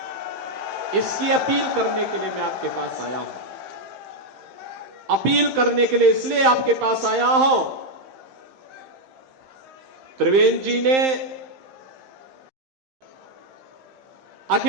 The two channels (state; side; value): late; left; 15 ms